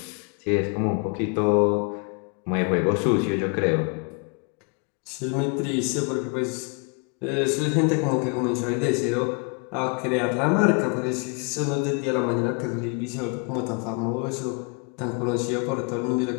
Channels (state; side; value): quieter; right; 35.3 dB